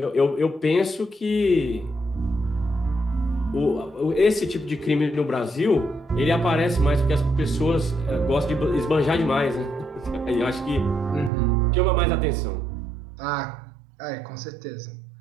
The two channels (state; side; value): drops out; left; at 11.3 s